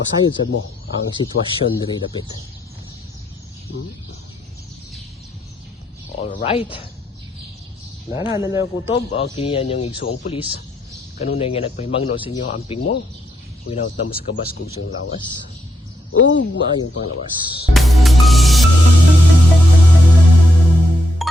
sad mo ang sitwasyon diri dapit. All right. Nana na kutob o kiniyan yung igsuong pulis. Kanunay nga nagpahimangno sa inyo amping mo. Winaut na mo sa kabas kung siyang lawas. Ug maayong panglawas.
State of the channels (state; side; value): normal; both; correlation 0.80